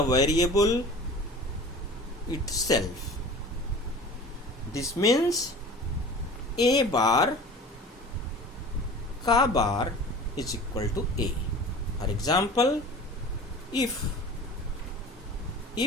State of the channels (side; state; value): both; normal; correlation 0.40